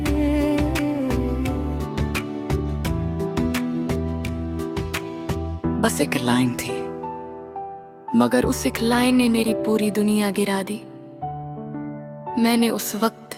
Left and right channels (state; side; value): identical; both; correlation 1.00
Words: बस एक लाइन थी, मगर उस एक लाइन ने मेरी पूरी दुनिया गिरा दी। मैंने उस